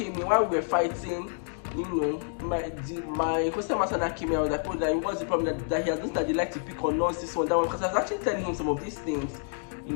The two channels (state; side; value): silent; right; 59 dB below the other